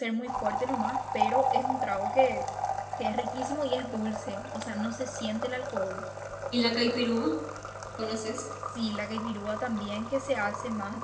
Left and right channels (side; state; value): both; identical; correlation 1.00